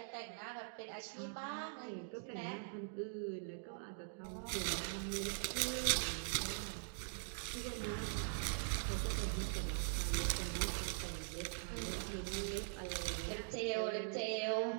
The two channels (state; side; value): silent; left; digital silence